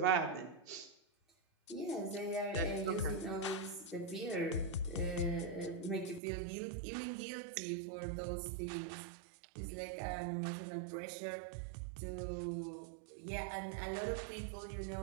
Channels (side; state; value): left; drops out; at 6.2 s